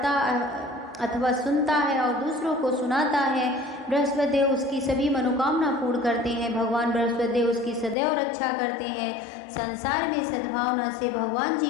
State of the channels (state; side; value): drops out; right; at 8.0 s